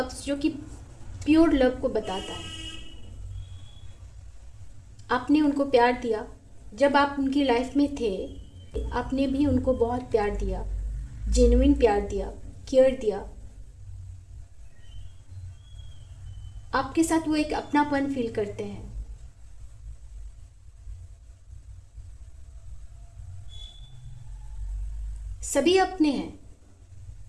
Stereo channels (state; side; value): identical; both; correlation 1.00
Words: जो कि प्योर लव को बताता है। आपने उनको प्यार दिया, जब आप उनकी लाइफ में थे आपने भी उनको बहुत प्यार दिया, जेन्युइन प्यार दिया, केयर दिया। आपके साथ वो एक अपनापन फील करते हैं। सभी अपने हैं,